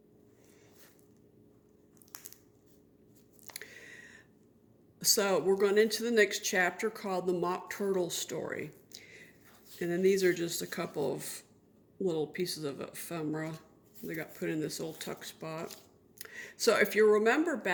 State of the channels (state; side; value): identical; both; correlation 1.00